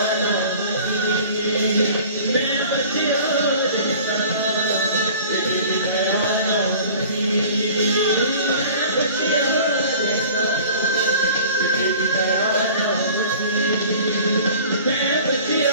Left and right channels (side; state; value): both; inverted; correlation -0.45